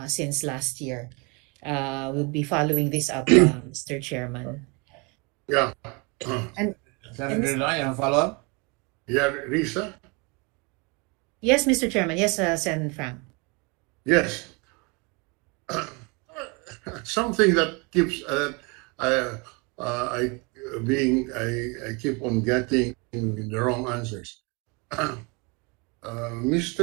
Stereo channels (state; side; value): quieter; left; 30.1 dB